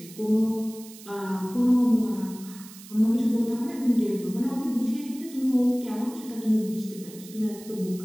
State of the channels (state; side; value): noise; right; hiss, 18 dB below the sound